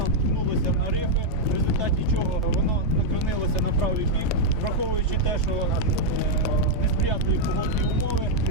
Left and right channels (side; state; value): both; normal; correlation -0.01